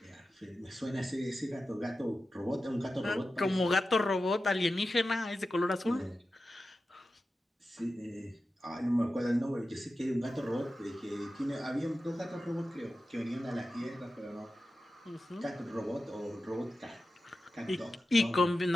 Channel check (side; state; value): both; normal; correlation 0.93